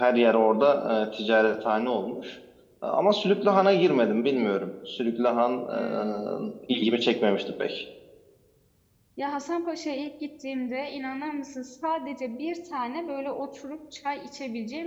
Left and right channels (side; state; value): both; identical; correlation 1.00